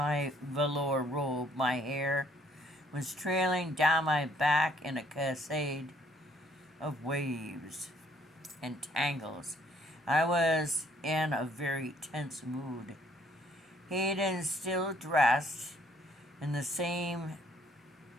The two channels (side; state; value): both; normal; correlation 0.63